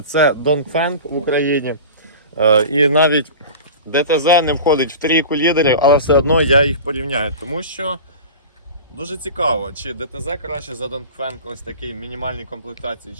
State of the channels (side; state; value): both; inverted; correlation -0.34